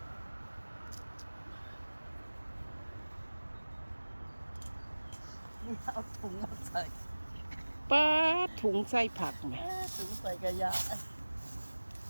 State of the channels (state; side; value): inverted; both; correlation -1.00